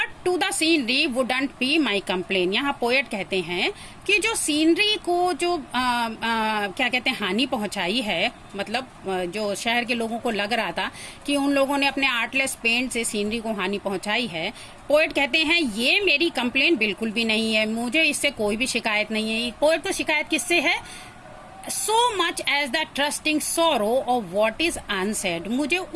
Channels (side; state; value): both; identical; correlation 1.00